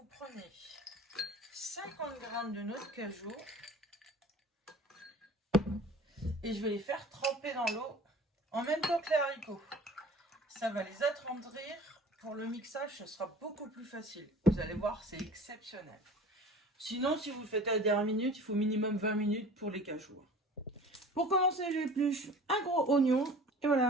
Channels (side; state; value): both; normal; correlation 0.43